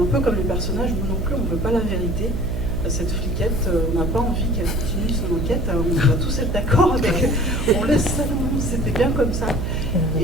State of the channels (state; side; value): noise; right; hum, 2 dB below the sound